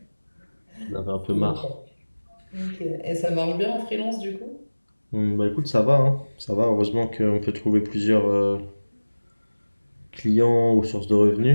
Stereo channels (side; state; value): both; inverted; correlation -1.00